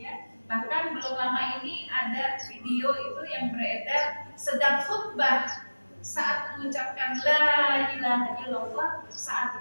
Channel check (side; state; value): both; inverted; correlation -1.00